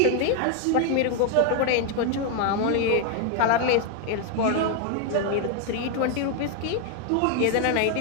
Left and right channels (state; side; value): different; both; correlation 0.01